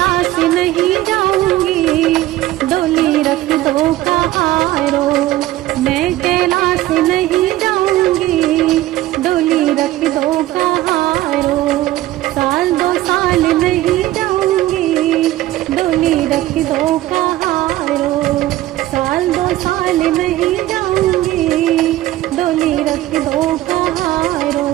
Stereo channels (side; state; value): left; quieter; 15.6 dB